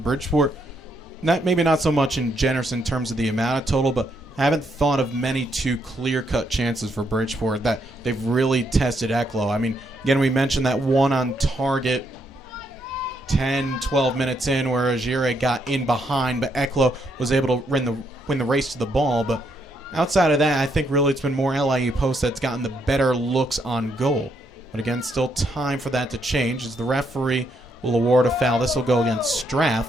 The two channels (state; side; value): normal; both; correlation 0.75